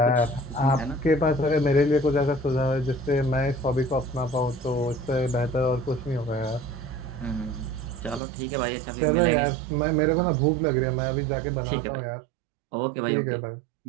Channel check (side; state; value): left; drops out; at 8.2 s